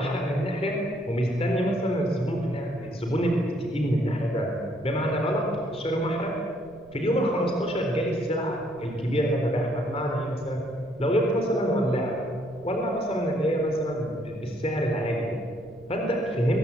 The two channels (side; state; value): right; noise; rumble, 24 dB below the sound